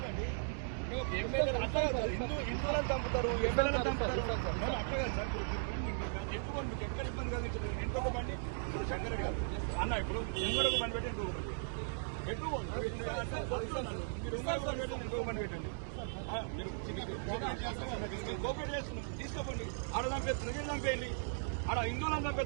హిందువులను చంపుతారు, ఎమ్మెల్యేలను చంపుతారు. అట్లా సార్ ఎక్కువ ఎక్కడ ఇబ్బంది కలిగించలేదు. ఇంకొక బండి ఇప్పుడు శంకర్ గారు అన్న ఇప్పుడు ఇంకొక బండి పెట్టి ఇంకొక బండి ఎక్కువ మీరు ఇంకొక బండి పెట్టండి. కోపరేట్ చేస్తున్నాం, తీసుకోకండి. ఆడ చంపేస్తున్నారు, వీళ్ళు చంపేయండి. ఆడ హిందువులను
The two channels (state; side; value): silent; left; digital silence